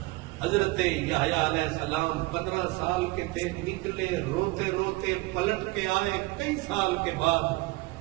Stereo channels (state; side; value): quieter; left; 22.2 dB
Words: حضرت یحییٰ علیہ السلام 15 سال کے تھے، نکلے روتے روتے، پلٹ کے آئے کئی سال کے بعد،